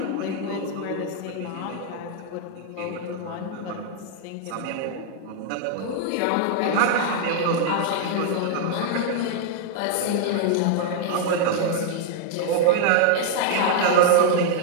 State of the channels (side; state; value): both; different; correlation 0.00